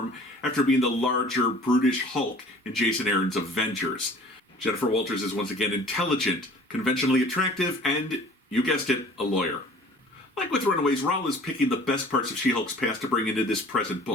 after being the larger, brutish Hulk in Jason Aaron's Avengers. Jennifer Walters is once again intelligent, conventionally attractive, and, you guessed it, a lawyer. Like with Runaways, Rowell is picking the best parts of She-Hulk's past to bring into this present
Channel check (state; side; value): normal; both; correlation 0.49